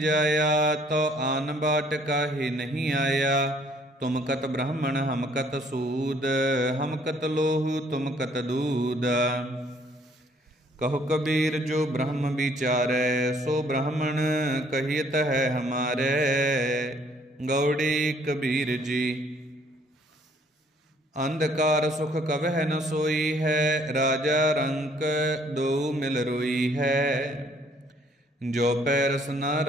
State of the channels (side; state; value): both; normal; correlation 0.62